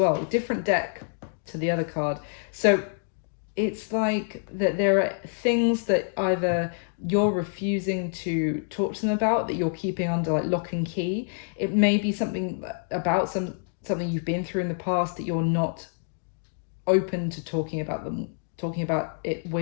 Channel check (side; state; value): right; silent; digital silence